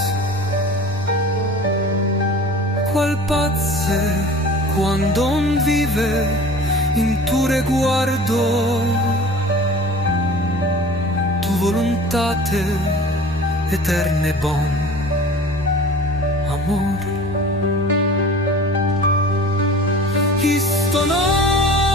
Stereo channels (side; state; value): both; normal; correlation 0.42